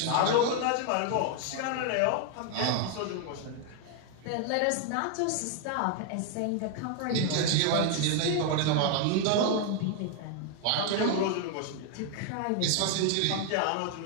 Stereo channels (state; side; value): different; both; correlation 0.00